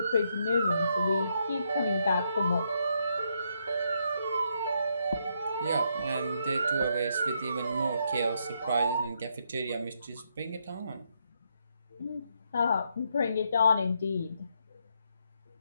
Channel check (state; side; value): inverted; both; correlation -0.77